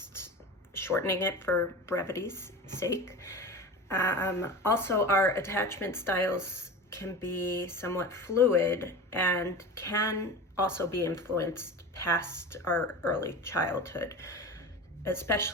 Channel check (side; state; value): both; normal; correlation 0.31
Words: shortening it for brevity's sake. Also, our attachment styles can be somewhat fluid and can also be influenced past our early childhood,